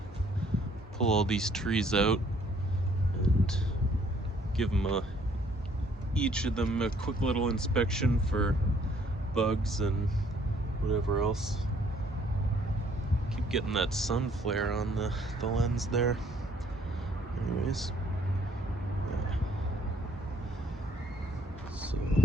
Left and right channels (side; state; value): both; normal; correlation 0.63